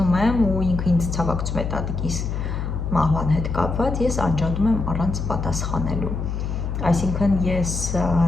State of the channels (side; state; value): left; noise; hum, 3 dB below the sound